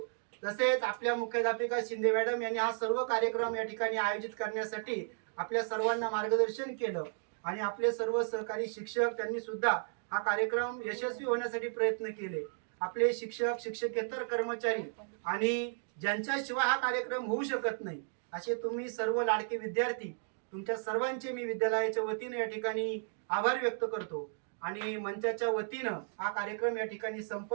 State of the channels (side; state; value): left; silent; digital silence